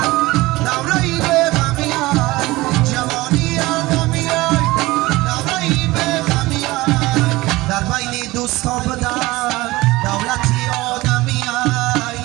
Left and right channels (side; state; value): left; quieter; 20.0 dB